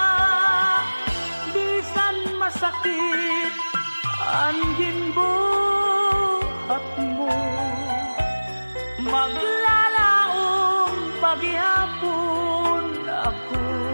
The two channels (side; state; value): both; inverted; correlation -1.00